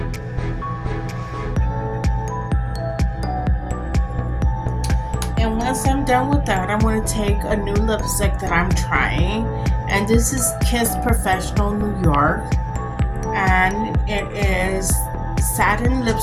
And once I'm done with that, I'm going to take a new lipstick that I'm trying. And this is Kiss Professional New York. And it is satin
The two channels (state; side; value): identical; both; correlation 1.00